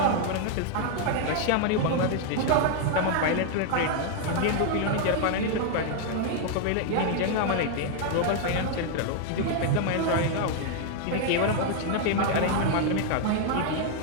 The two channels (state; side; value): different; both; correlation 0.00